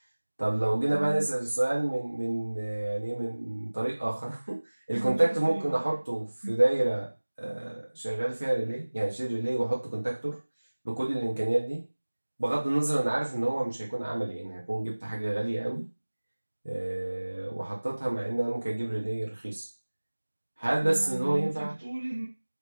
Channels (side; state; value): both; inverted; correlation -1.00